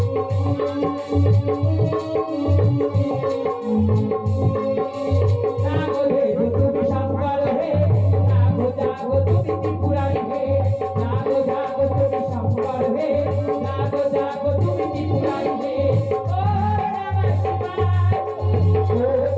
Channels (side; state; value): both; identical; correlation 1.00